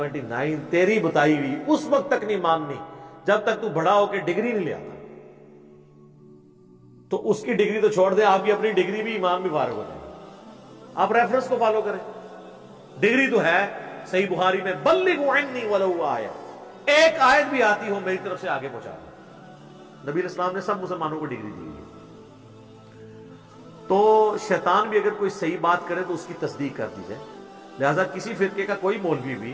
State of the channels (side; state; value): both; identical; correlation 1.00